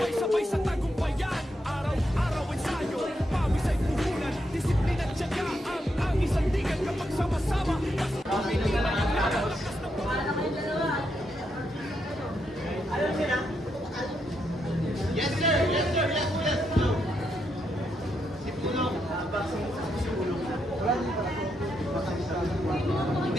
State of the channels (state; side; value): normal; both; correlation 0.81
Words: sa tagumpayan. Araw-araw ensayo, pawis ay puhunan. Disiplina at tiyaga ang isang digan kapag sama-sama. Yes sir, yes sir, yes, yes. Si Pulong.